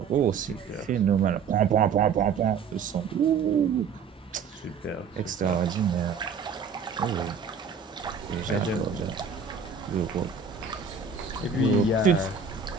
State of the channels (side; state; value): left; quieter; 5.9 dB